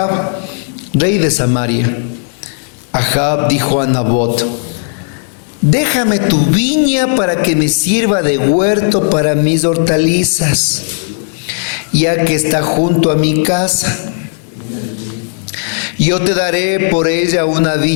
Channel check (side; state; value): right; silent; digital silence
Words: rey de Samaria. Ahab dijo a Nabot: déjame tu viña para que me sirva de huerto para mis hortalizas, ya que está junto a mi casa. Yo te daré por ella una